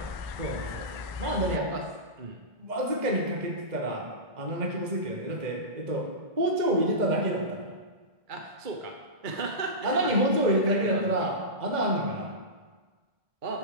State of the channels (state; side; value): late; left; 2.0 ms